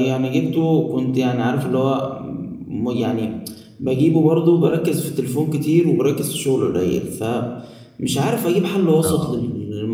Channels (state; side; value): identical; both; correlation 1.00